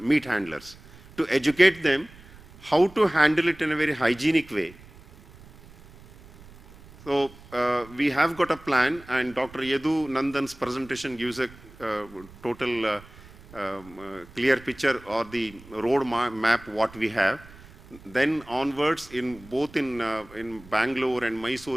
handlers, to educate them how to handle it in a very hygienic way. So we have got a plan, and Dr. Yadu Nandan's presentation gives a total clear picture or the road map what we have. Then onwards, both in Bangalore and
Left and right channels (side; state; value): right; noise; rumble, 21 dB below the sound